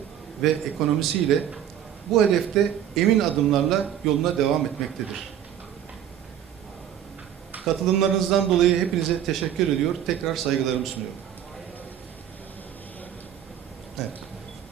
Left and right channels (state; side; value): quieter; left; 10.1 dB